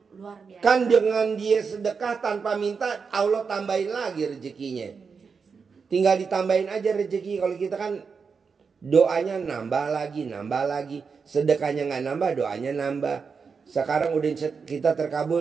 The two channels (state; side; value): quieter; left; 5.5 dB